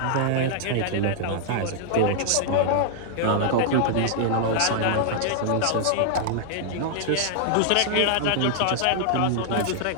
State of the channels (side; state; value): both; different; correlation -0.01